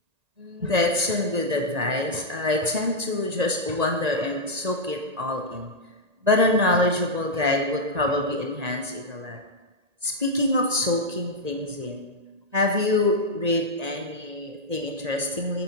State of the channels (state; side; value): late; left; 1.9 ms